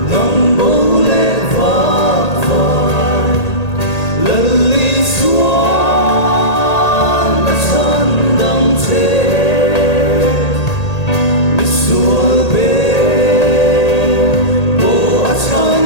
nắng bố lệ vác vai lần ly xuân đã chân đắm thế mi xuân bên bố đã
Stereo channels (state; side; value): late; right; 1.8 ms